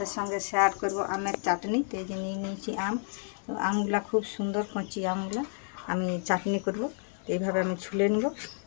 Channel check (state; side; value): silent; right; 58 dB below the other